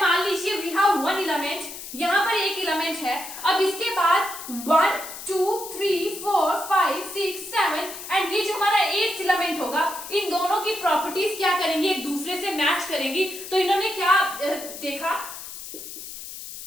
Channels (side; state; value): left; noise; hiss, 11 dB below the sound